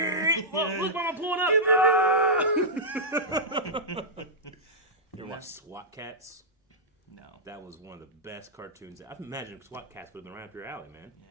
Look, Mama pulling up. You ever watch SWAT Cats? No. That was one of the best cartoons. I imagine SWAT Cats would have been right up your alley, man.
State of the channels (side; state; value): both; normal; correlation -0.10